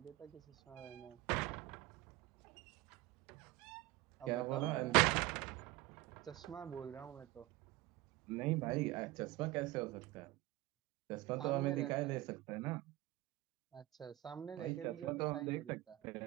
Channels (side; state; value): left; quieter; 18.3 dB